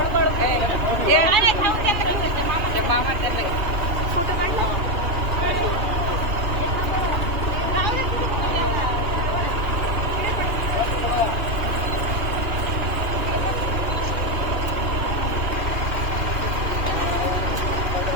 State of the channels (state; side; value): late; left; 2.9 ms